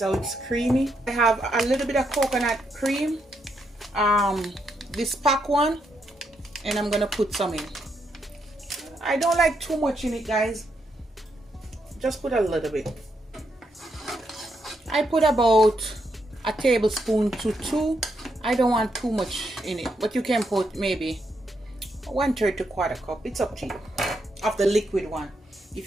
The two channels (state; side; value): normal; both; correlation 0.79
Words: how it's creamy. I have a little bit of coconut cream, this pack one, and I'm gonna put some in. I don't like too much in it, guys. Just put a little bit. I put about a tablespoon to 2. I don't want too much in it, but you can put maybe 1/3 to 1/4 cup. It's up to you, of the liquid one, if